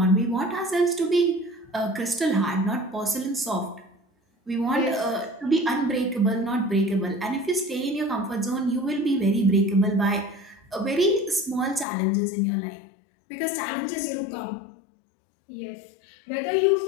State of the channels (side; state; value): right; drops out; at 11.9 s